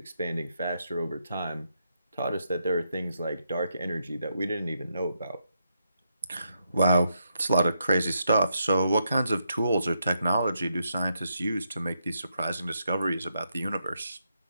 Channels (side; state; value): both; inverted; correlation -0.81